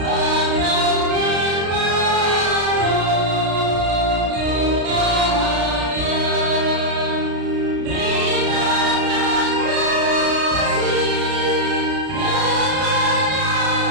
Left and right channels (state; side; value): late; left; 33 ms